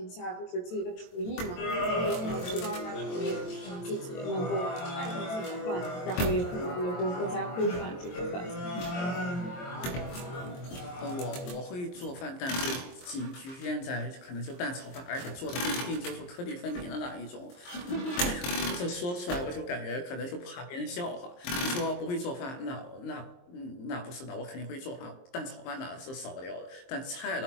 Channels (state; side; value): late; right; 23 ms